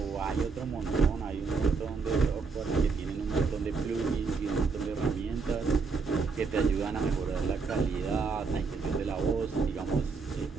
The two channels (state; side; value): quieter; left; 4.7 dB